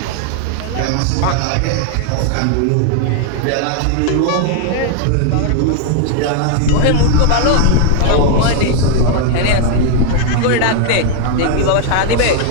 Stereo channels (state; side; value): different; both; correlation 0.00